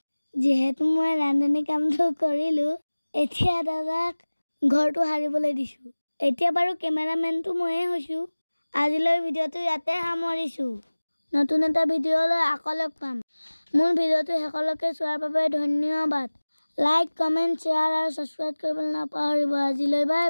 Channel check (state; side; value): inverted; both; correlation -1.00